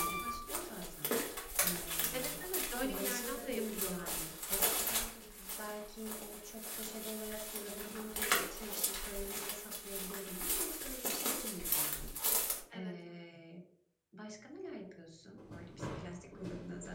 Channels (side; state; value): both; identical; correlation 1.00